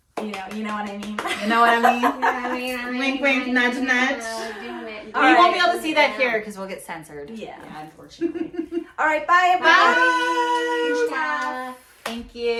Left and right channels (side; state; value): both; identical; correlation 1.00